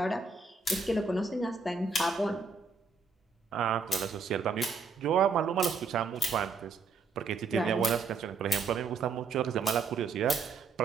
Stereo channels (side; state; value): left; quieter; 4.5 dB